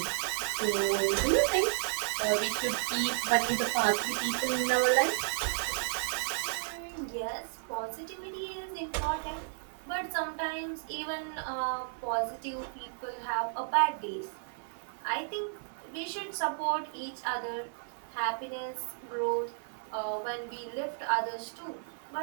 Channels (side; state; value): left; silent; 55 dB below the other